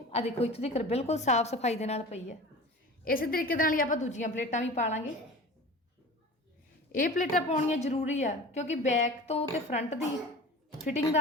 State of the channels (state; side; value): normal; both; correlation 0.37